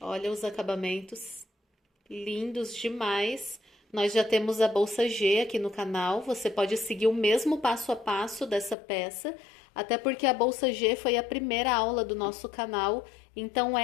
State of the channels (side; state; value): right; drops out; at 8.8 s